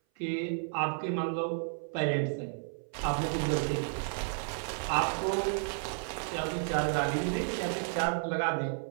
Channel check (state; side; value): silent; left; 56 dB below the other